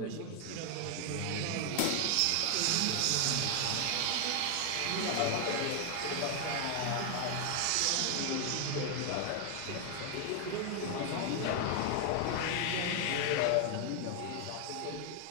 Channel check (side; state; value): both; different; correlation 0.01